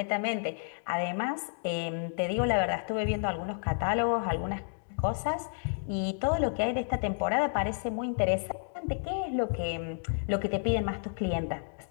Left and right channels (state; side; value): silent; right; digital silence